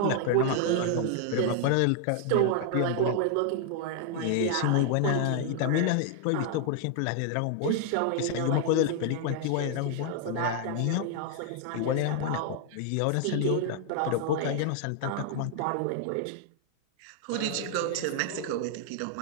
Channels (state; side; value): different; both; correlation 0.00